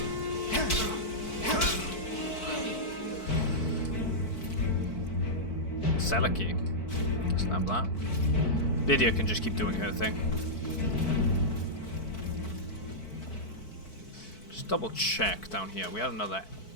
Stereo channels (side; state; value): right; late; 4.6 ms